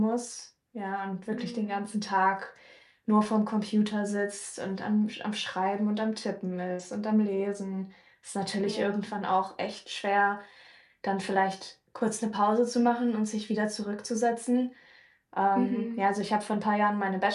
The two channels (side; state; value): both; identical; correlation 1.00